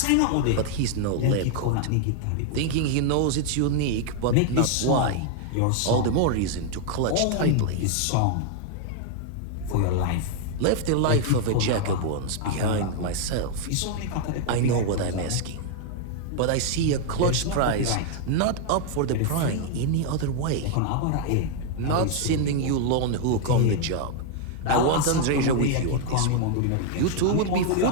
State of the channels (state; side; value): different; both; correlation 0.00